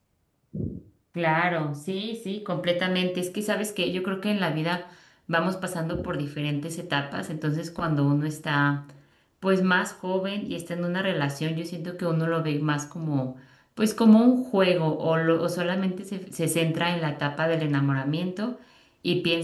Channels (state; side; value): identical; both; correlation 1.00